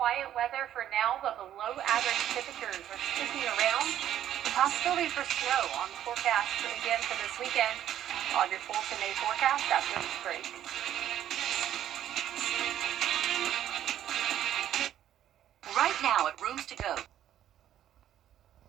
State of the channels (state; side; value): quieter; left; 11.3 dB